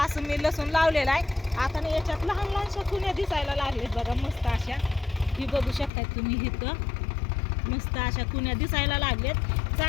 असं मी लसूण लावलेला आहे. आता ना याच्यात लहान लहानशा कुण्या दिसायला लागलेत बघा, मस्त अशा. ही बघू शकताय तुम्ही, इथं मस्त अशा कुण्या दिसायला लागलेत.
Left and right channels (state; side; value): drops out; right; at 5.9 s